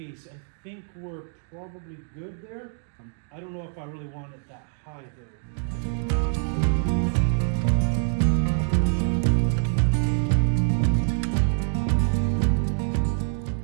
I think we're probably good there. I don't know if I really want it that high though.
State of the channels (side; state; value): left; silent; 59 dB below the other